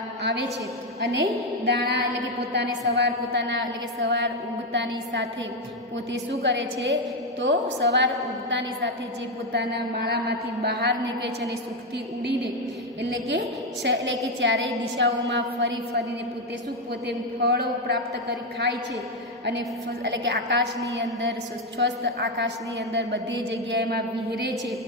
आवे छे अने दाणा एटले के पोताने सवार उगतानी साथे पोते शुं करे छे तो सवार उगतानी साथे जे पोताना माळामांथी बहार निकळे छे अने सुखथी उडीने एटले के चारेय दिशाओमां फरी फरीने पोते शुं पोते फळो प्राप्त करी खाय छे अने एटले के आकाशनी अंदर स्वस्थ आकाशनी अंदर बधी जग्याएमां विहरे छे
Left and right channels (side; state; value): both; normal; correlation 0.07